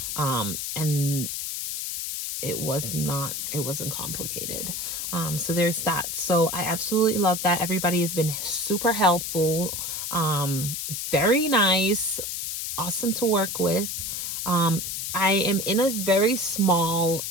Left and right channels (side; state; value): left; noise; hiss, 4 dB below the sound